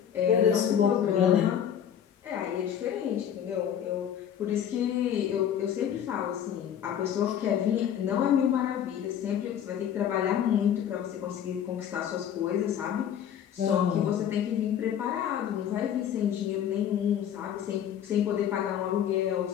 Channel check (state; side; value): quieter; right; 9.3 dB